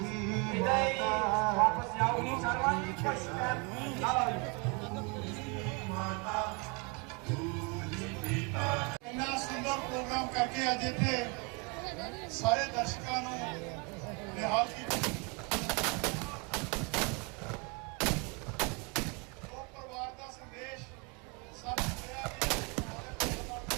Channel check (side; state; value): left; quieter; 31.8 dB